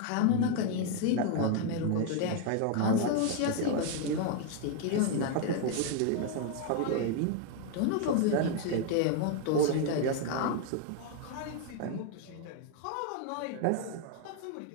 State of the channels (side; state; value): both; different; correlation 0.01